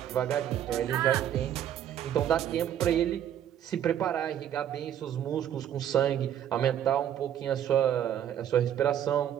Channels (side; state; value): left; quieter; 10.4 dB